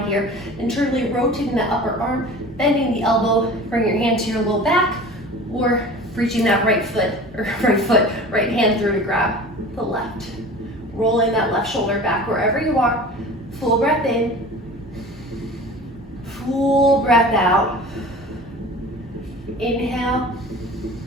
here. Internally rotating the upper arm, bending the elbow, bring your hand to your low back, or reaching that right hand through to grab the left. Rolling that left shoulder back wherever you are. Full breath in. Full breath out. Inhale.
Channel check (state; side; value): normal; both; correlation 0.39